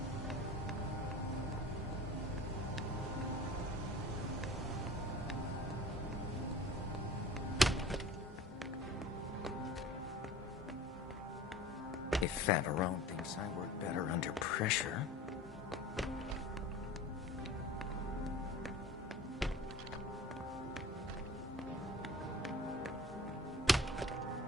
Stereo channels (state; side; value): normal; both; correlation 0.41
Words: If Favarone thinks I work better under pressure...